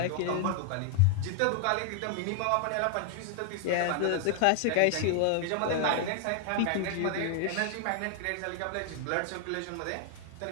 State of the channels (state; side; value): different; both; correlation 0.00